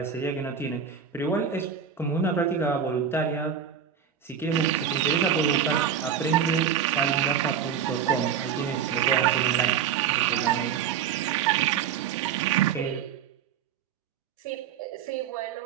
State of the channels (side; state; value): left; quieter; 7.9 dB